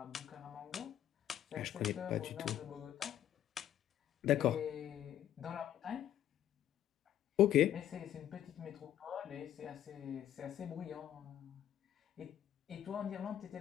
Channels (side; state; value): right; quieter; 11.3 dB